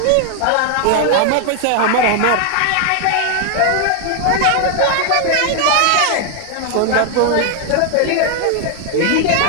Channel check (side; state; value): both; different; correlation 0.00